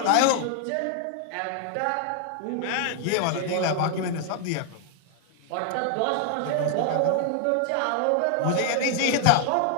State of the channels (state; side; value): different; both; correlation 0.00